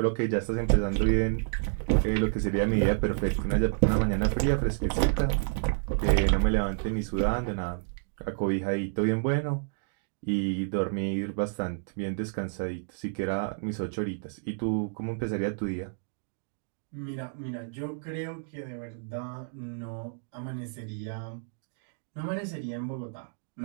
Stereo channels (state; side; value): silent; left; digital silence